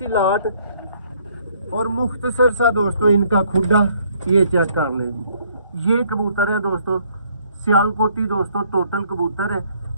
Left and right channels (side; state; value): both; inverted; correlation -0.64